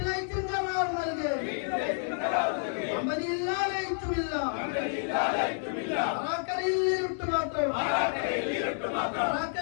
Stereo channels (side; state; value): right; silent; 58 dB below the other